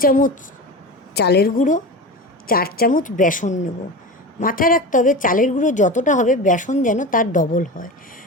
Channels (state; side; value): normal; both; correlation 0.27